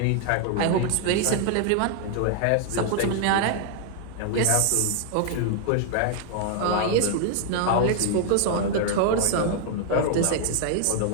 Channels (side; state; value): both; different; correlation -0.01